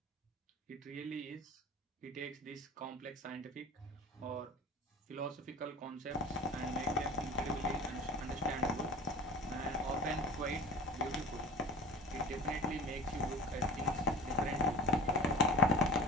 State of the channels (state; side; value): normal; both; correlation 0.35